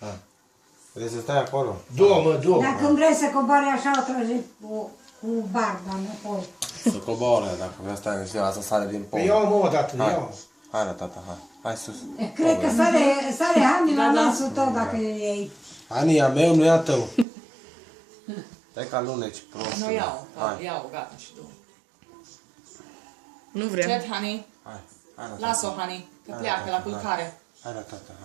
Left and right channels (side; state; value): left; drops out; at 17.2 s